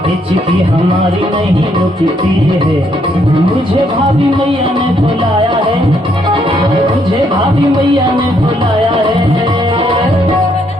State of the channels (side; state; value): both; normal; correlation 0.72